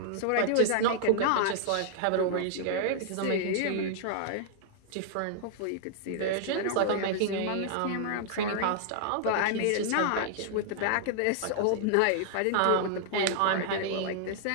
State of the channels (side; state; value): both; different; correlation -0.01